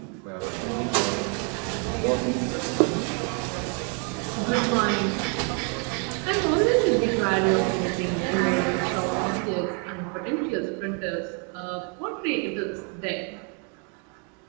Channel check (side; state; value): left; quieter; 38.1 dB